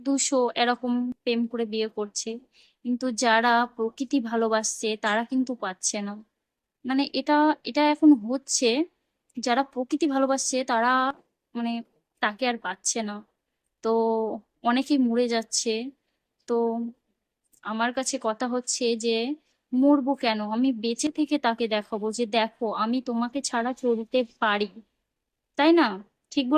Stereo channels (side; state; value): both; identical; correlation 1.00